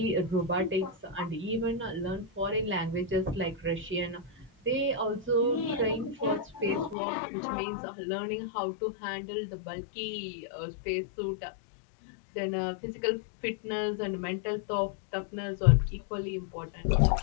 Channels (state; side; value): drops out; right; at 7.0 s